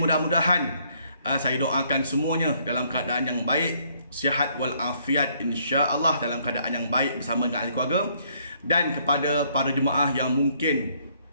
saya doakan semuanya dalam keadaan yang baik, sihat walafiat, insya-Allah dalam keadaan yang baik bersama dengan ahli keluarga. Dan kepada para jemaah yang mungkin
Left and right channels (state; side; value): inverted; both; correlation -0.67